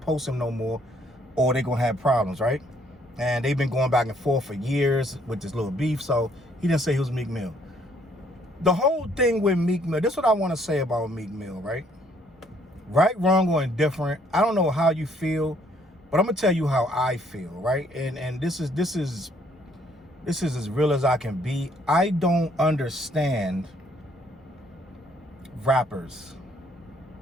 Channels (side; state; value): both; normal; correlation 0.65